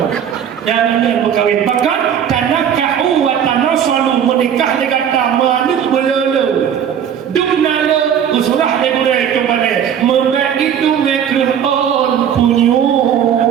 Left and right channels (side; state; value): left; quieter; 8.8 dB